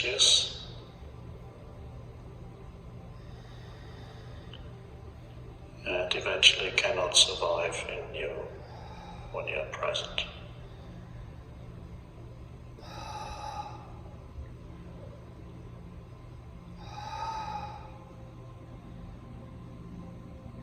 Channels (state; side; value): identical; both; correlation 1.00